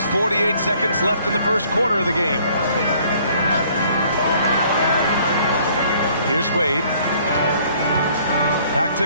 48 seconds left in the first quarter of the game. Here's Wade. Back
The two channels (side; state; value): both; inverted; correlation -0.60